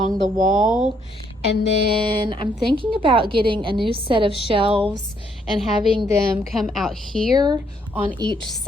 the wall, and then I'm thinking about getting a new set of shelves and having them come out here on each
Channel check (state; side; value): normal; both; correlation 0.70